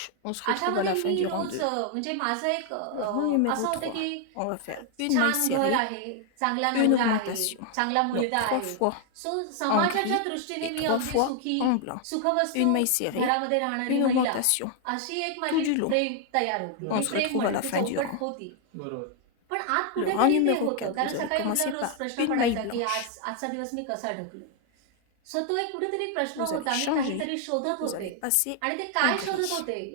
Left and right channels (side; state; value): both; different; correlation 0.00